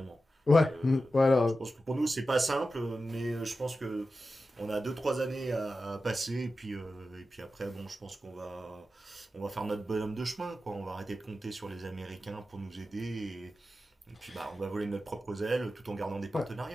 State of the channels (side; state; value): both; normal; correlation 0.92